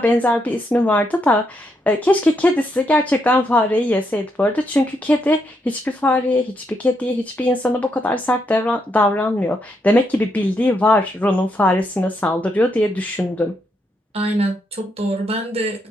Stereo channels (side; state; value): both; normal; correlation 0.78